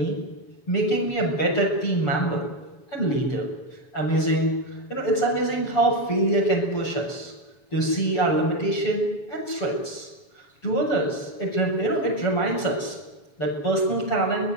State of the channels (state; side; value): late; right; 7.2 ms